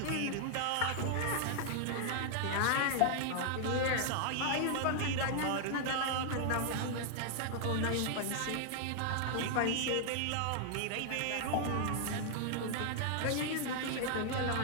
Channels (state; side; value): different; both; correlation 0.00